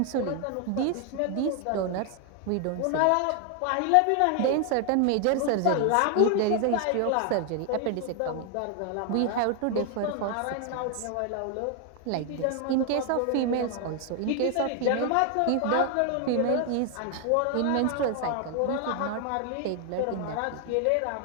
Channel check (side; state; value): both; different; correlation 0.00